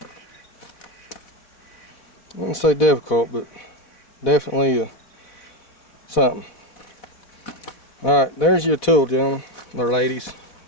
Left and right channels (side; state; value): right; late; 4.0 ms